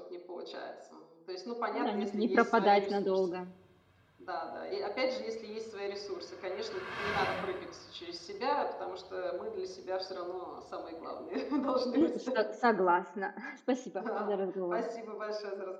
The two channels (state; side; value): identical; both; correlation 1.00